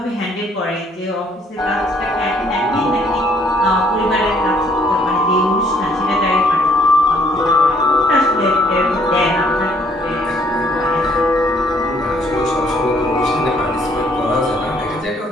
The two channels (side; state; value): both; normal; correlation 0.64